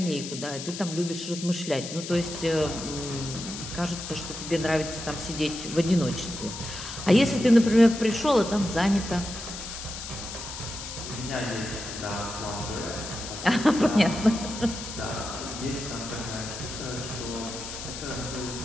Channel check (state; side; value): noise; left; hiss, 9 dB below the sound